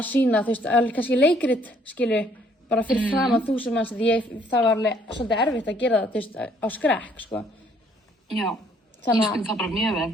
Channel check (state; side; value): normal; both; correlation 0.64